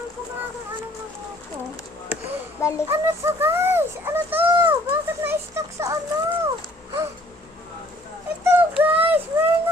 ko nga kung ano ko. Balik. Ano to, guys? Ano to? Bakit na-stuck sa ano? Ito, guys! Meron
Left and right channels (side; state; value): both; normal; correlation 0.57